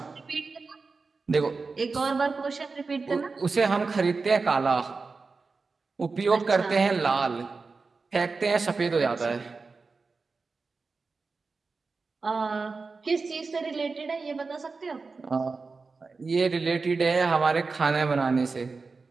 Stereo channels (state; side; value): quieter; left; 4.3 dB